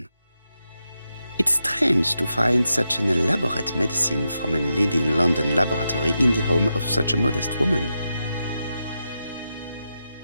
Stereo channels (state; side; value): inverted; both; correlation -0.87